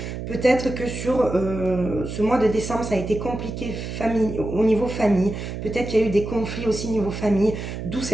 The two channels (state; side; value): noise; right; hum, 7 dB below the sound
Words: Peut-être que sur ce mois de décembre, ça a été compliqué au niveau famille. Peut-être qu'il y a eu des conflits aussi au niveau famille, d'où